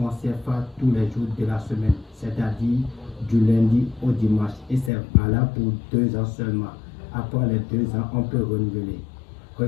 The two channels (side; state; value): right; drops out; at 4.9 s